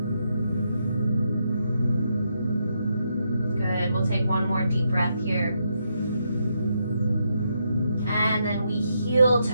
Good, we'll take one more deep breath here. And then we heel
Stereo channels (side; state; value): both; inverted; correlation -0.80